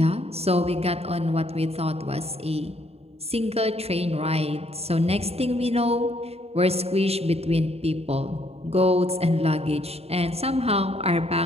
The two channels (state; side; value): late; left; 0.30 ms